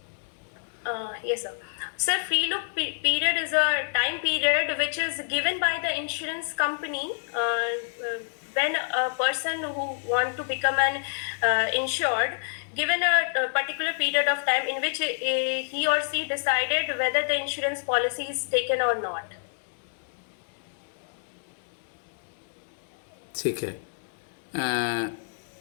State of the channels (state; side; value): silent; right; digital silence